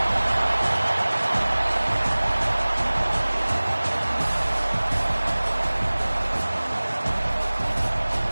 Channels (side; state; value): both; inverted; correlation -1.00